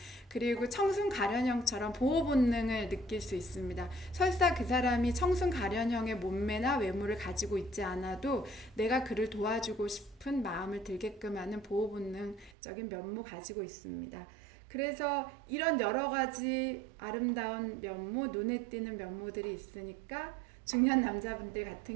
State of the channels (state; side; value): drops out; left; at 12.6 s